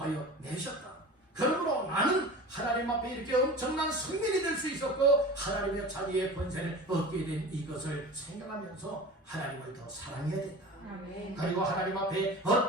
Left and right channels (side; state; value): both; normal; correlation 0.35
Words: 내셨다. 그러므로 나는 하나님 앞에 이렇게 엄청난 성민이 될 수 있었고 하나님의 자녀의 권세를 얻게 된 이것을 생각하면서 하나님을 더 사랑해야 된다. 그리고 하나님 앞에